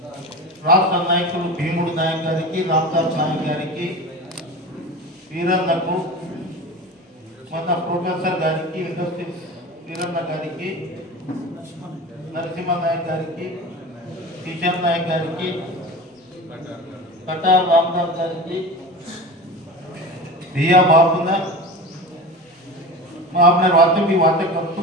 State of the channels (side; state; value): both; normal; correlation 0.30